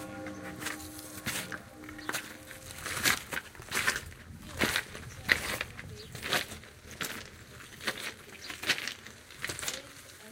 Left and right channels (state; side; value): identical; both; correlation 1.00